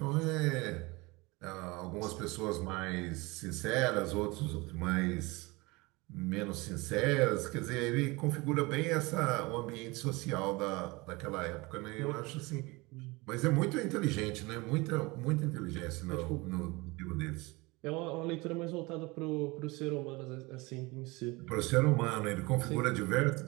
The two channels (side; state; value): left; quieter; 24.1 dB